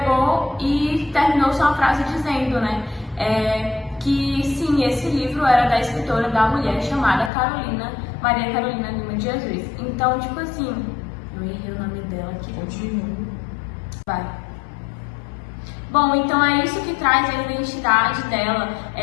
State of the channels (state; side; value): drops out; right; at 7.3 s